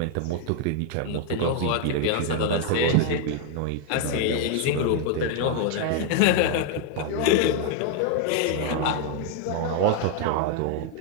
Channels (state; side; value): different; both; correlation 0.00